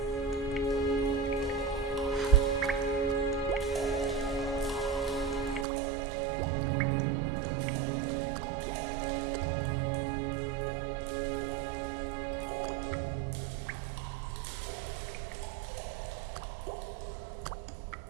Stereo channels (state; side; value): drops out; left; at 5.7 s